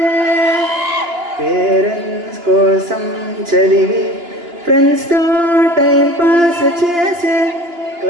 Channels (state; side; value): late; left; 2.9 ms